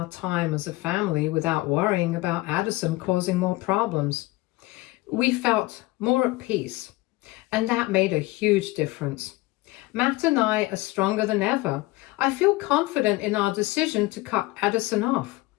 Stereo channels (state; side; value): quieter; right; 20.4 dB